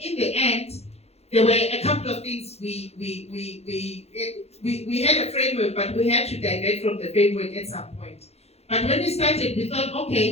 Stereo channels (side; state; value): right; late; 0.30 ms